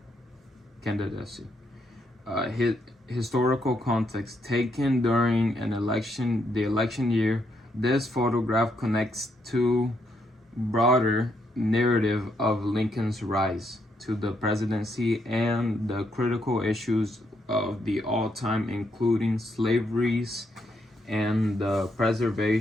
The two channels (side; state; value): both; normal; correlation 0.77